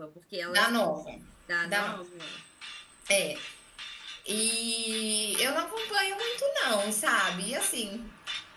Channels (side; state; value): both; identical; correlation 1.00